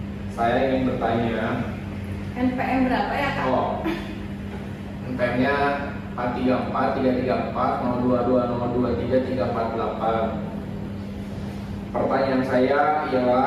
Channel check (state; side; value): identical; both; correlation 1.00